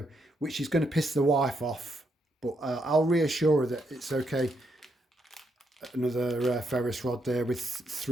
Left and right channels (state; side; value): normal; both; correlation 0.78